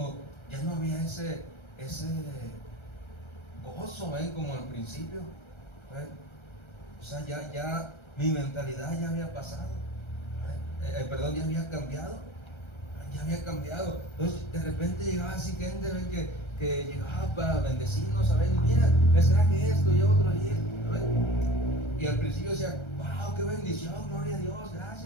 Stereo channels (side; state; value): right; late; 1.3 ms